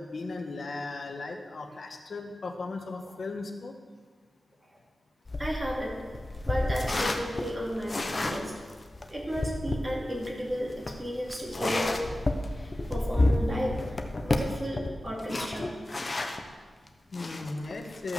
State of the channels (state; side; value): normal; both; correlation 0.95